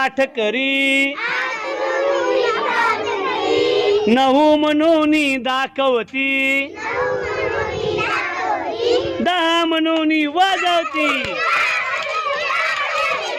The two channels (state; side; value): identical; both; correlation 1.00